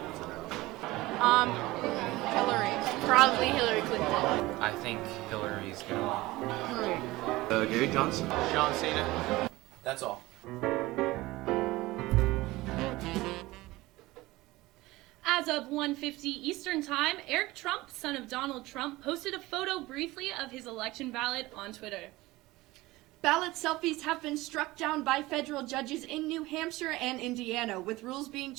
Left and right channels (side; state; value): left; quieter; 19.5 dB